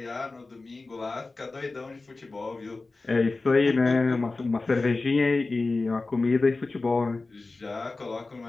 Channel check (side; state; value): right; quieter; 3.5 dB